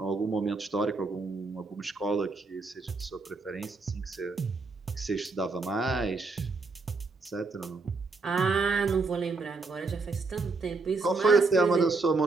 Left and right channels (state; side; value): quieter; left; 3.9 dB